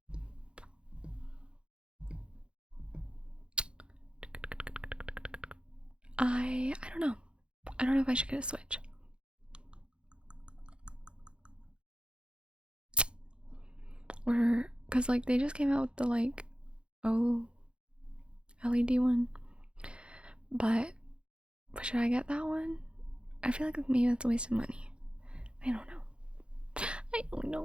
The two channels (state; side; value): late; left; 0.056 ms